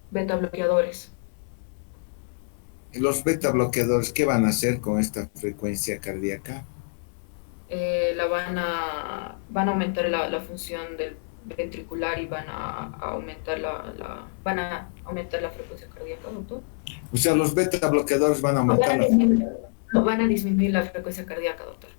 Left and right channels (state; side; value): silent; right; digital silence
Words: Beta bloqueadores. Los beta bloqueadores, ¿qué van a hacer con esta frecuencia cardíaca? Van a aumentar la función del ventricular y van a aumentar la frecuencia cardíaca, doctor. O sea, los beta bloqueadores van a aumentar Van a disminuir la frecuencia cardíaca, doctor.